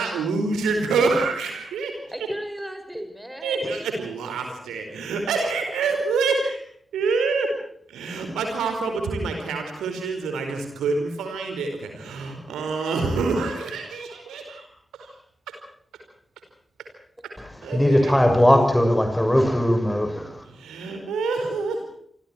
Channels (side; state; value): both; normal; correlation 0.86